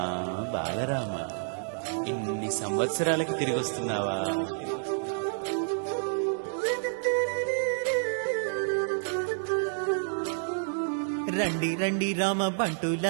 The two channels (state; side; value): silent; left; digital silence